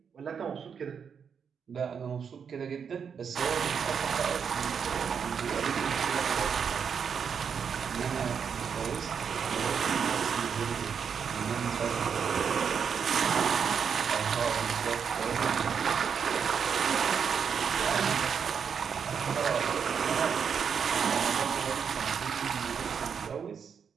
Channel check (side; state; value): left; quieter; 6.9 dB